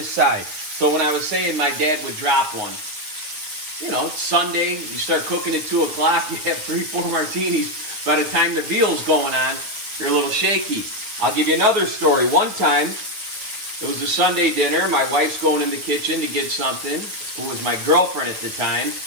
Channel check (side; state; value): left; late; 9.4 ms